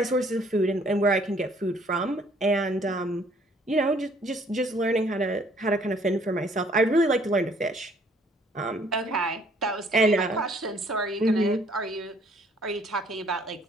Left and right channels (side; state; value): both; normal; correlation 0.61